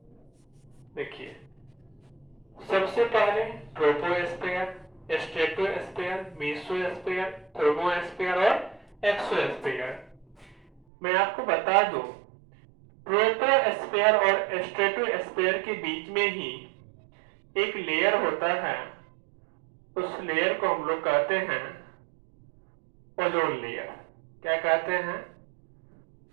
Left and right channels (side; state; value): left; drops out; at 10.8 s